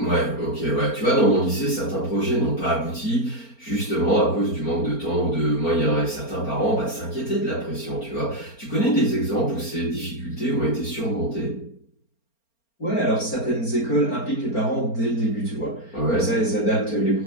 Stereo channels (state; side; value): late; right; 4.4 ms